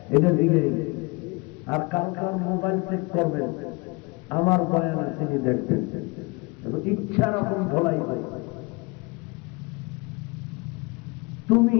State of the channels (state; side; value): quieter; right; 27.9 dB